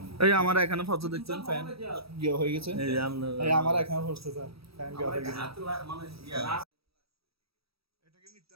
এই আমার এখানে ফটো দেখছেন ফ্যান গিয়ে হয়ে গেছে এই আমার এখানে পড়ছে স্যার ফ্যান গিয়ে হয়ে গেছে মানে ইয়া এটা কি মিথ্যা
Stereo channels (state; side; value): late; left; 0.77 ms